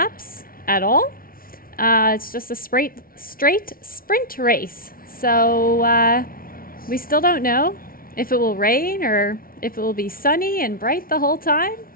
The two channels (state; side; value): late; right; 0.43 ms